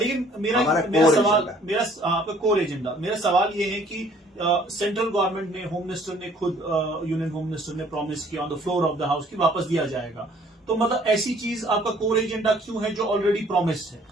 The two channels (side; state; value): both; normal; correlation 0.58